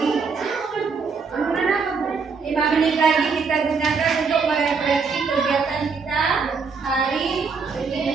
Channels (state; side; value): quieter; left; 5.1 dB